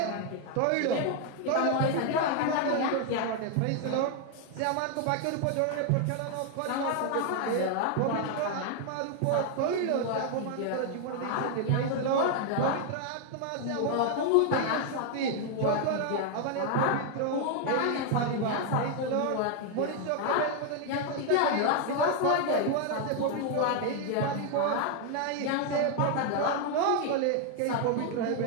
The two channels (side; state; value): both; different; correlation 0.00